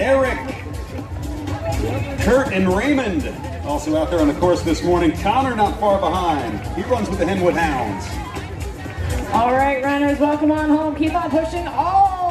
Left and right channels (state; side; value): identical; both; correlation 1.00